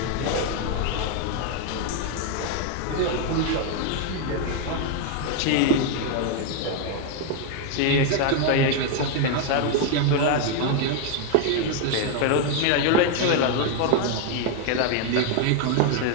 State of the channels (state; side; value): different; both; correlation 0.01